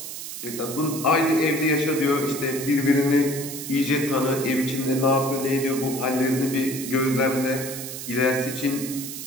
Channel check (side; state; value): right; noise; hiss, 8 dB below the sound